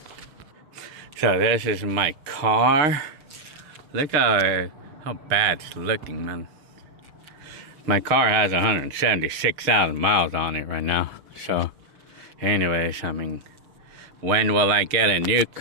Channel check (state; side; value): late; left; 6.6 ms